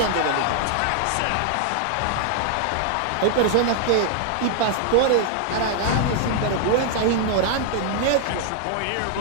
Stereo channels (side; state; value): both; different; correlation 0.00